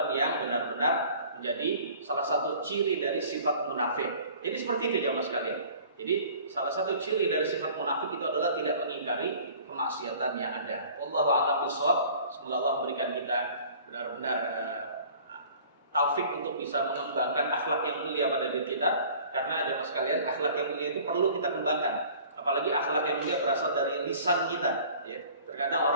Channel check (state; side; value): inverted; both; correlation -0.48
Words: yang benar-benar menjadi salah satu ciri dari sifat munafik. Jadi seperti itu ya mas sekalian. Jadi salah satu ciri dari sifat munafik itu adalah tidak mengingkari kemaksiatan yang ada. Wallahu a'lam bishawab. Semoga Allah memberikan kita benar-benar taufik untuk bisa mengembangkan akhlak yang mulia pada diri kita. Karena jemaah sekalian, akhlak yang mulia itu perlu kita kembangkan. Apalagi akhlak yang mulia berasal dari lisan kita. Ya. Terkadang